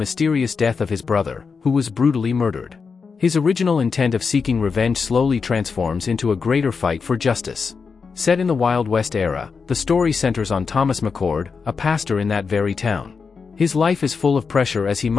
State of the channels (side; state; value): right; quieter; 5.3 dB